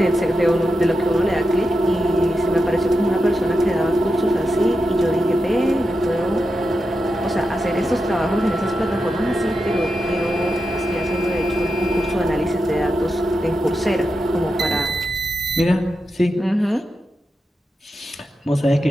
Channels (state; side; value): normal; both; correlation 0.88